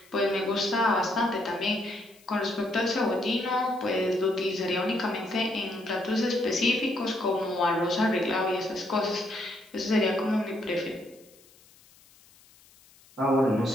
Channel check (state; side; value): noise; left; hiss, 27 dB below the sound